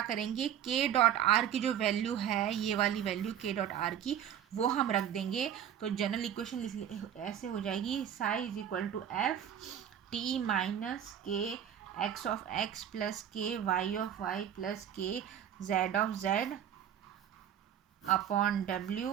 करेंगे, के डॉट आर की जो वैल्यू है, ये वाली वैल्यू के डॉट आर की, वो हम रख देंगे। तो जनरल इक्वेशन ऐसे हो जाएगी, psi is equal to F T minus K X of X plus K Y of Y plus K Z of Z upon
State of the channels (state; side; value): quieter; left; 9.8 dB